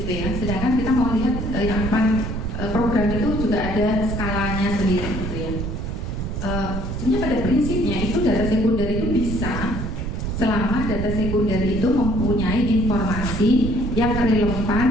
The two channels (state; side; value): noise; right; rumble, 4 dB below the sound